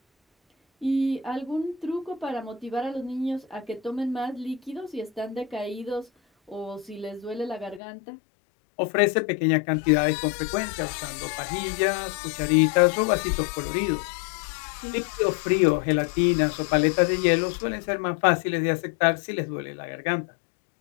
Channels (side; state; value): right; drops out; at 7.8 s